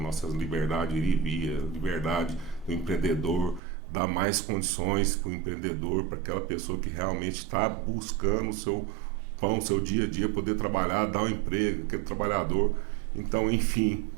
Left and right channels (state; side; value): drops out; left; at 3.6 s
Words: liberdade de ir e vir, a liberdade do empreendedor, dar mais condições para o empreendedor, para aquela pessoa que realmente está buscando o seu pão, o seu dia a dia, poder trabalhar, dar um emprego, aquele trabalhador. Então, enfim,